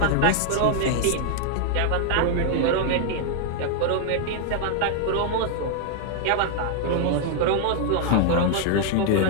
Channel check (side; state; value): both; different; correlation 0.00